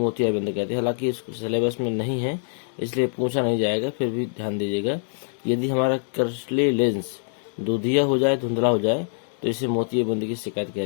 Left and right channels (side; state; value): right; silent; 62 dB below the other